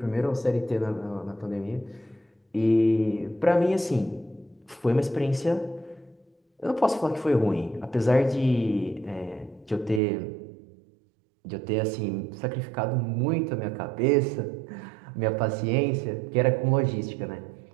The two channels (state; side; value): drops out; left; at 10.0 s